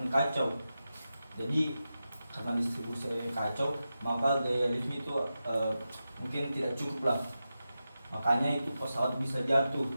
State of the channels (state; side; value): inverted; both; correlation -0.91